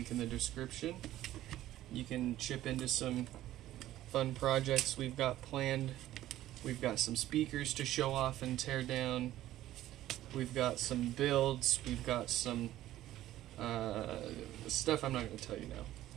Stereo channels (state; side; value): quieter; left; 14.0 dB